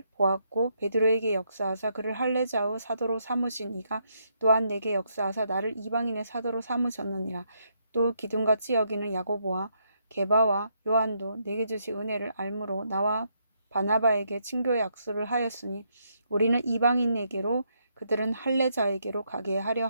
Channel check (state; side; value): inverted; both; correlation -0.76